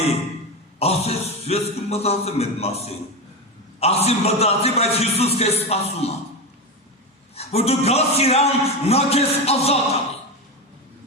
ասեց, ես կմտածեմ այդ մասին, ասի մտածի, բայց Հիսուս քեզ սպասում է, որ դու գաս իրան, նա քեզ ազատ անի,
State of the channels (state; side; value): normal; both; correlation 0.16